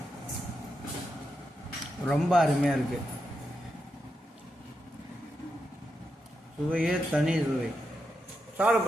ரொம்ப அருமையாக இருக்குது. சுவையே தனி சுவை.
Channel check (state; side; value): normal; both; correlation 0.86